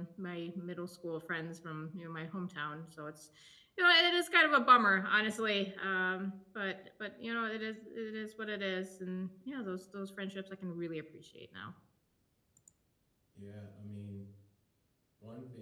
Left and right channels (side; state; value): both; identical; correlation 1.00